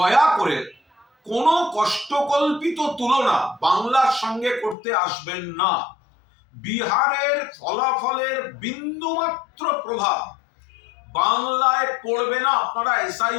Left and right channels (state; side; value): drops out; right; at 4.8 s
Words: করে কোনো কষ্টকল্পিত তুলনা বাংলার সঙ্গে করতে আসবেন না। বিহারের ফলাফলের বিন্দুমাত্র প্রভাব বাংলায় পড়বে না। আপনারা